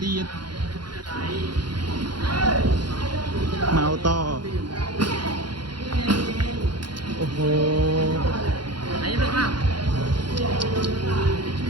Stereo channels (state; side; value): late; left; 0.71 ms